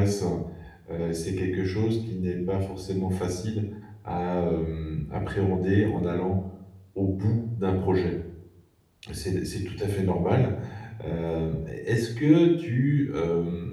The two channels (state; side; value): identical; both; correlation 1.00